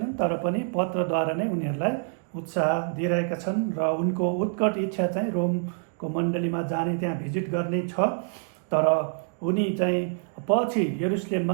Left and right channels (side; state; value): left; silent; digital silence